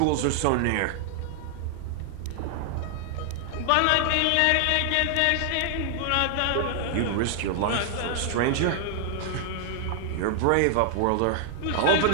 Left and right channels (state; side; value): different; both; correlation 0.00